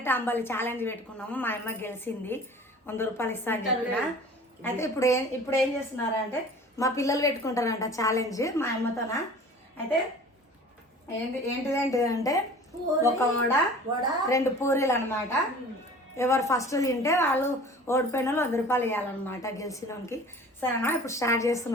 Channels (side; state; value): both; normal; correlation 0.44